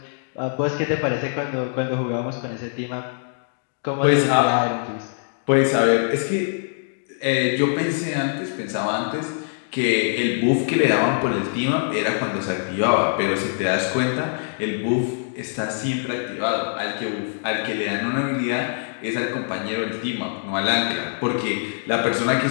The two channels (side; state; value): right; silent; digital silence